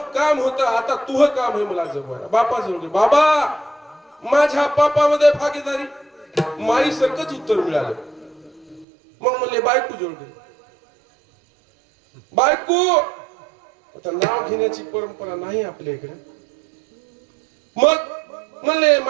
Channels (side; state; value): left; drops out; at 8.8 s